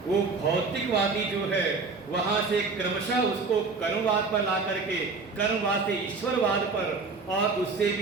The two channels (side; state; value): left; quieter; 4.3 dB